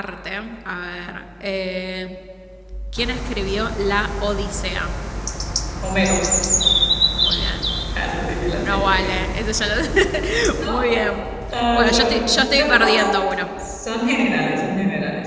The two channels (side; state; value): both; identical; correlation 1.00